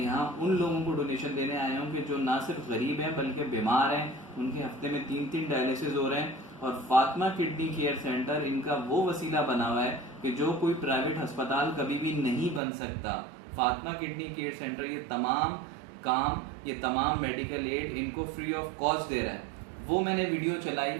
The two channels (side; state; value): left; drops out; at 12.6 s